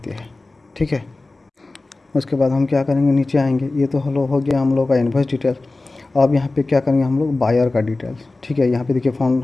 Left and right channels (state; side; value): quieter; right; 3.2 dB